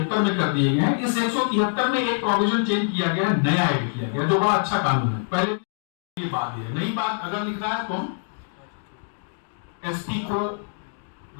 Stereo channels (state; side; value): silent; right; digital silence